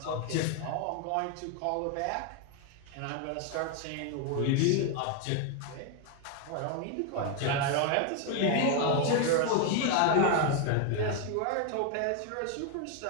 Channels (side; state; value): both; different; correlation 0.01